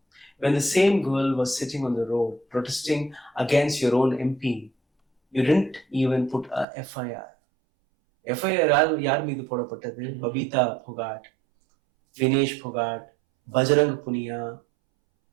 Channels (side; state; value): left; drops out; at 6.7 s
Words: When the same girl was sitting on the road protesting against your own MP, you didn't even put a FIR. FIR யார் மீது போடப்பட்டது? பபிதா புகாட், வினேஷ் புகாட், பஜரங் புனியா,